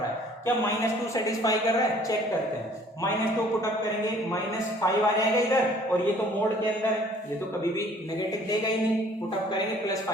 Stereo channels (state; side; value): normal; both; correlation 0.55